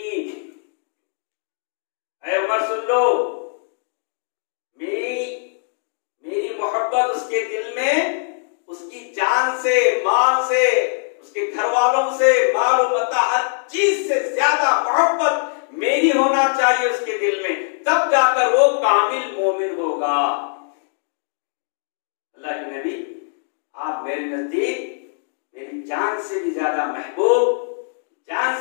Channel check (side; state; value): right; silent; digital silence